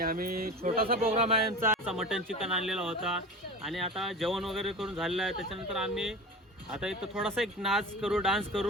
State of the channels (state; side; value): normal; both; correlation 0.32